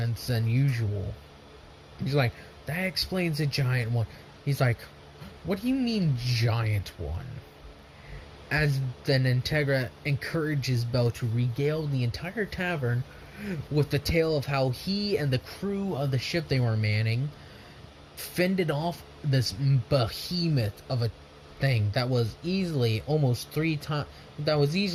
than usual. He's like, that explains the giant one. He's like, what do you mean giant one? As then Integra encourages Belle to regale the entire tavern with the tale of how he and the crew of the ship they were manning fended off this behemoth of a thing that was easily three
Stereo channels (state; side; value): identical; both; correlation 1.00